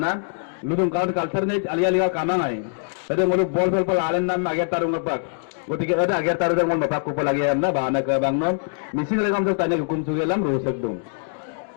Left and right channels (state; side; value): silent; right; digital silence